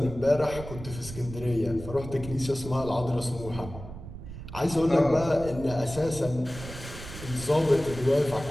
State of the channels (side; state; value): right; noise; rumble, 12 dB below the sound